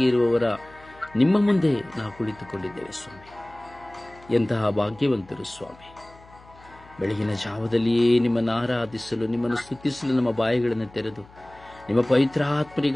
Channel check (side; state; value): left; noise; hum, 24 dB below the sound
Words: ಇರುವವರ ನಿಮ್ಮ ಮುಂದೆ ನಾವು ಕುಳಿತುಕೊಂಡಿದ್ದೇವೆ ಸ್ವಾಮಿ. ಎಂತಹ ಭಾಗ್ಯವಂತರು ಸ್ವಾಮಿ. ಬೆಳಗಿನ ಜಾವದಲ್ಲಿಯೇ ನಿಮ್ಮನ್ನು ಆರಾಧಿಸಲು, ನಿಮ್ಮನ್ನು ಸ್ತುತಿಸಲು ನಮ್ಮ ಬಾಯಿಗಳನ್ನು ತೆರೆದು ನಿಮ್ಮ